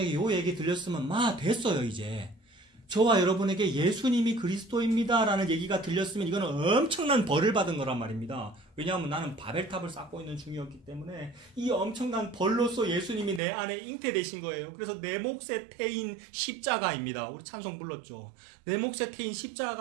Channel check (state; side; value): drops out; left; at 13.4 s